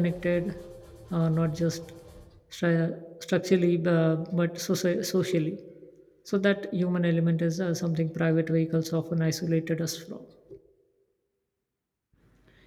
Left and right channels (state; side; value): identical; both; correlation 1.00